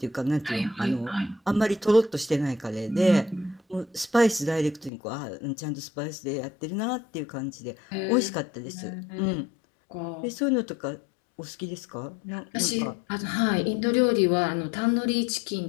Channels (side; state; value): right; drops out; at 4.9 s